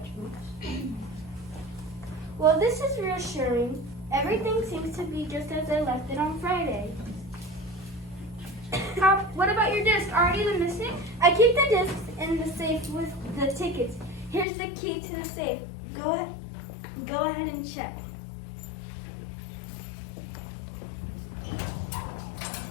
Well, this is reassuring. Everything seems to be just as I left it on Friday. What about your disc? Are any of them missing? I keep the discs in the safe with the tickets. Here's the key to the safe. Go ahead and check.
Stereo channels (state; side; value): drops out; right; at 14.5 s